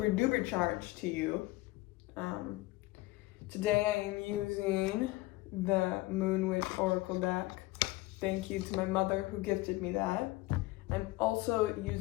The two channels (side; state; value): right; quieter; 20.0 dB